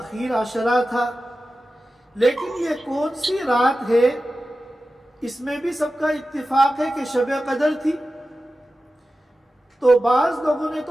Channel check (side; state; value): both; normal; correlation 0.94